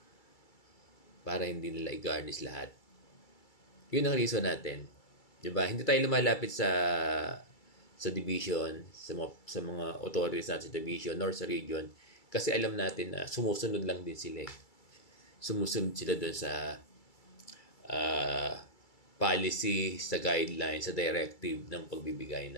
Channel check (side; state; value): right; late; 2.3 ms